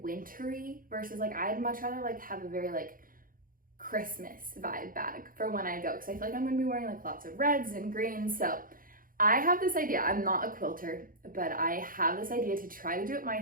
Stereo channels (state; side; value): late; left; 0.41 ms